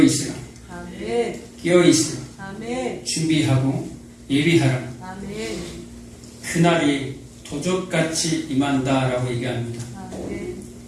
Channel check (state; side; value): identical; both; correlation 1.00